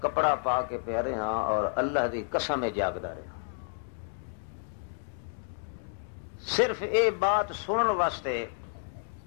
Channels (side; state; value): right; silent; digital silence